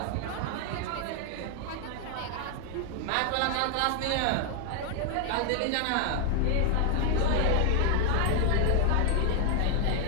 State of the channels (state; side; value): different; both; correlation 0.00